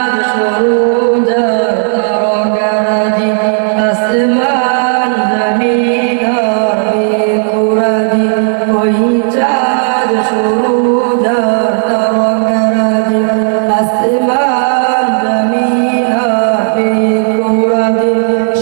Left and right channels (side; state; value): left; silent; 70 dB below the other